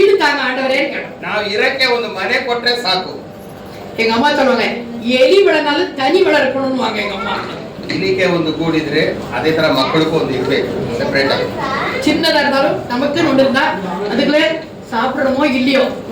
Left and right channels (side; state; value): both; identical; correlation 1.00